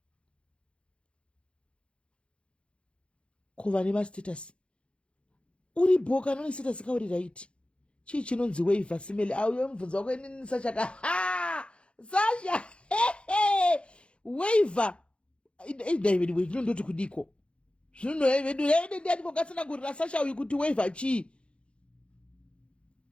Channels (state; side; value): late; right; 0.058 ms